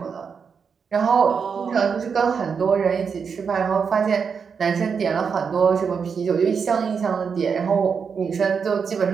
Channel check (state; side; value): quieter; left; 6.1 dB